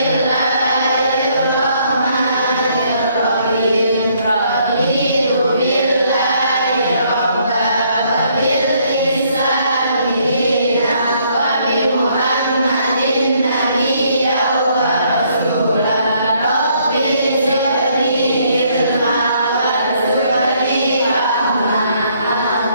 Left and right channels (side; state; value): both; inverted; correlation -0.68